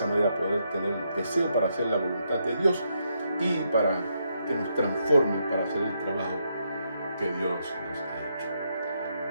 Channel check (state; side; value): inverted; both; correlation -0.78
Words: manera poder tener el deseo para hacer la voluntad de Dios y para que nos transforme para hacer el trabajo que Dios nos ha hecho.